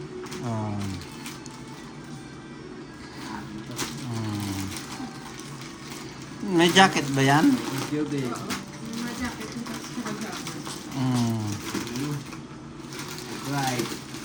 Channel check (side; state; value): both; identical; correlation 1.00